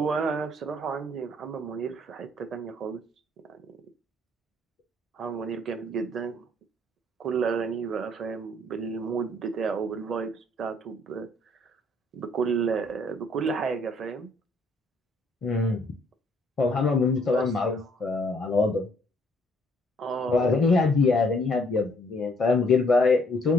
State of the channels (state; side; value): normal; both; correlation 0.65